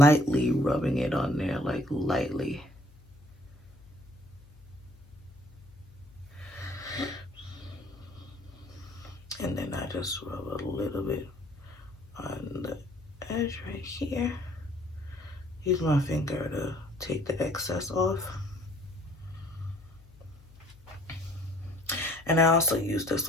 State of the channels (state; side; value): noise; left; hum, 24 dB below the sound